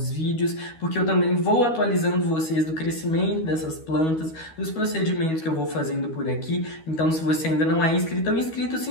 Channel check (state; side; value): late; right; 12 ms